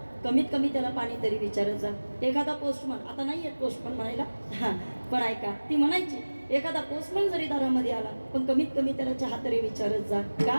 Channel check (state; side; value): inverted; both; correlation -1.00